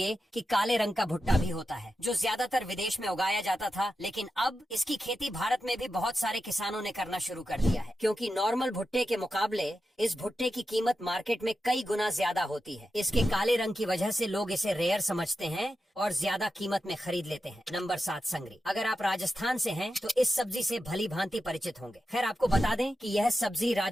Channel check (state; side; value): normal; both; correlation 0.90